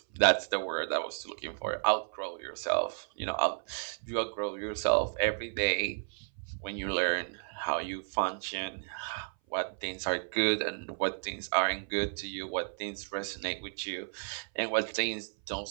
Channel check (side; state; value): left; silent; 56 dB below the other